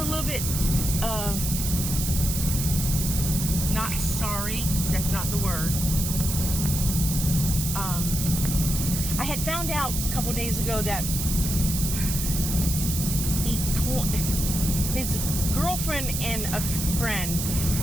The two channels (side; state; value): right; noise; hiss, 3 dB below the sound